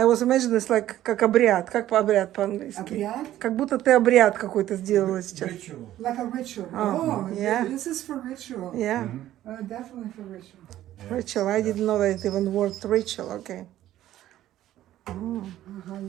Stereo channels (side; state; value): left; quieter; 13.3 dB